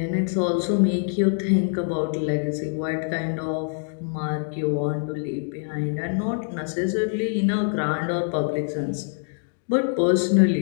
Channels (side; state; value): right; silent; digital silence